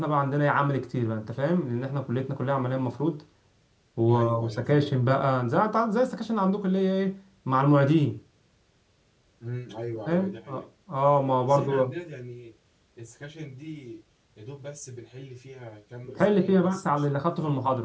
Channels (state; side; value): identical; both; correlation 1.00